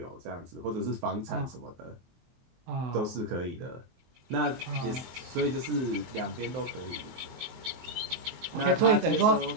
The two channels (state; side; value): late; left; 23 ms